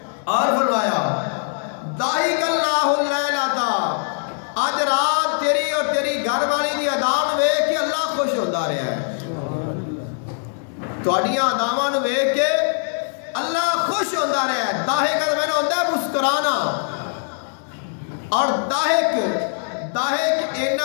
اور فرمایا داہک اللہ اللیلۃ, آج رات تیری اور تیری گھر والی دی اداں ویکھ کے اللہ خوش ہوتا رہا ہے. تہاڈیاں اداواں نوں ویکھ کے اللہ خوش ہوتا رہا ہے. داہک میں ہوتا ہے مسکرانا, اور داہک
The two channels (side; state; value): right; silent; digital silence